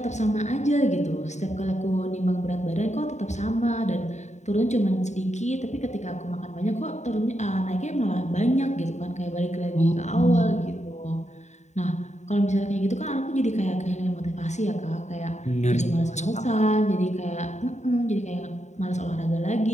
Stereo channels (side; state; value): right; late; 0.34 ms